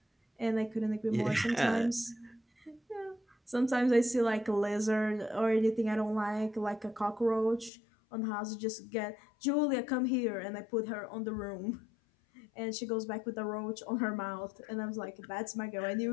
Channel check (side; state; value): right; drops out; at 7.7 s